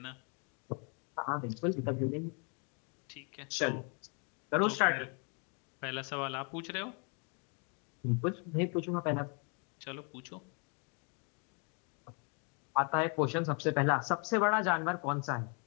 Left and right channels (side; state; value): right; quieter; 36.5 dB